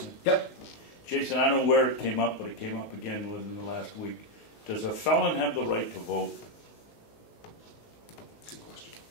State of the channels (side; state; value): right; late; 19 ms